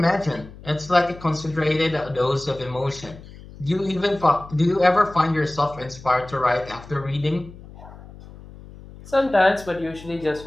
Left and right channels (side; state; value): left; noise; hum, 18 dB below the sound